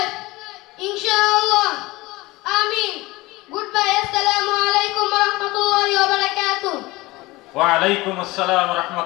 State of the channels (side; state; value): right; quieter; 20.7 dB